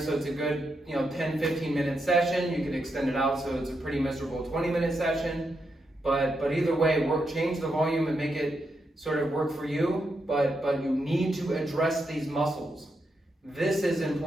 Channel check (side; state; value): both; normal; correlation 0.83